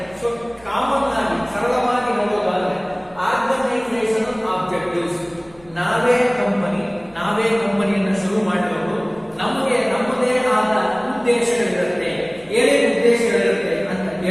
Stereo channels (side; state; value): right; noise; hum, 27 dB below the sound